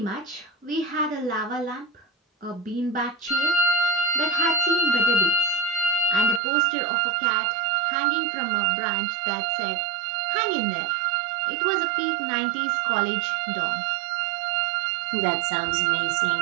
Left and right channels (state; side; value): drops out; left; at 6.4 s